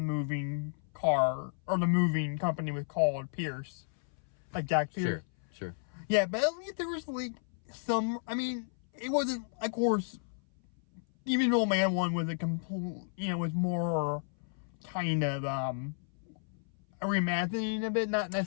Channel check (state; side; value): silent; right; 56 dB below the other